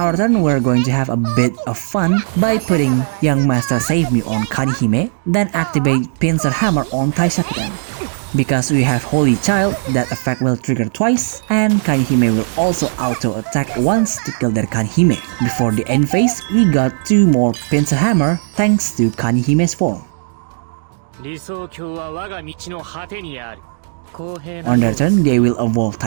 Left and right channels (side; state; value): left; silent; digital silence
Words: turn, we're going to have a bit of fun by putting Young Master Save Me on Kanihime, then activate Pincer Hammer on Taishakuten. Because we have Holy Child, that effect will trigger twice, and Kanihime will also auto-attack once to kill their Kanihime. Before the end phase, we got 2 more Pincer Hammer thanks to Kanihime's form. On their turn, they will evolve